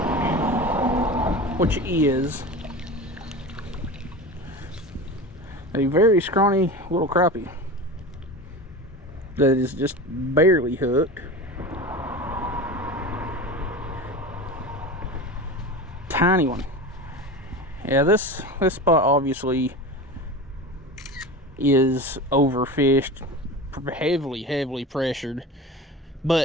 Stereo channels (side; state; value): both; normal; correlation 0.30